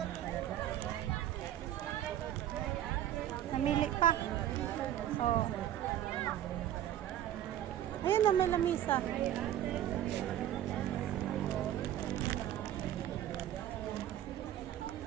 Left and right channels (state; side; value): quieter; left; 11.9 dB